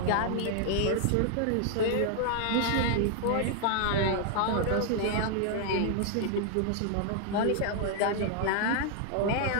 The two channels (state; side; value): different; both; correlation 0.00